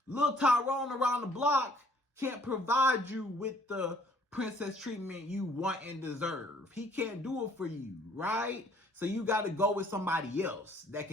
Lil Tyrone around the block can't provide you with the princess treatment you want and deserve. He can't do it for you, right? So you got to go with somebody else that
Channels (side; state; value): both; normal; correlation 0.60